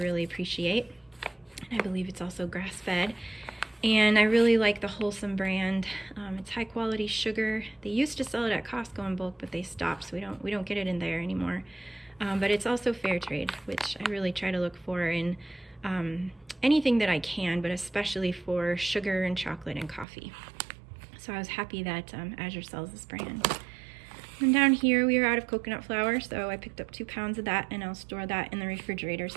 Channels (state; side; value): drops out; left; at 20.1 s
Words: appreciate. And I believe it's also grass-fed. And I really like the Wholesome brand. It's high quality sugar. They used to sell it at Costco in bulk, but they stopped, so we don't get it in there anymore. But it's also fair trade, which I really try to look for in anything that I can, but especially for sugar and chocolate and coffee. So I was happy that Azure sells this brand. And down here we are out of coconut flour, so I picked up 2 pounds of that, and I'll store that in the refrigerator